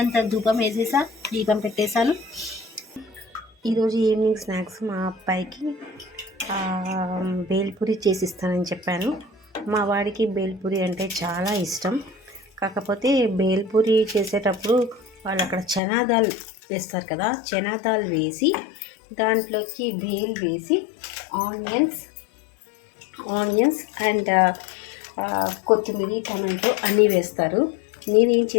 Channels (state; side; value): drops out; right; at 15.8 s